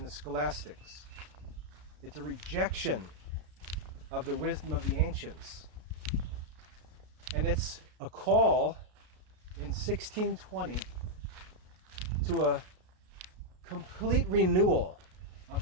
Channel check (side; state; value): left; late; 33 ms